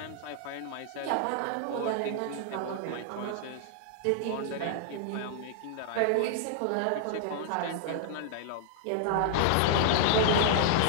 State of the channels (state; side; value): different; both; correlation -0.01